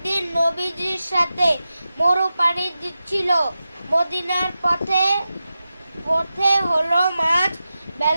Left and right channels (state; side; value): inverted; both; correlation -0.92